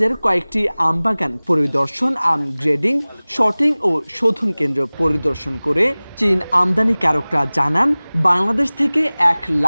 কয়েকটি আমবাগান পরিদর্শন, আম গ্রেডিং, শর্টিং ও শোধন কেন্দ্র পরিদর্শন করে চীন আমদানিকারকরা জানান, বাংলাদেশ থেকে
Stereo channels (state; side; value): inverted; both; correlation -1.00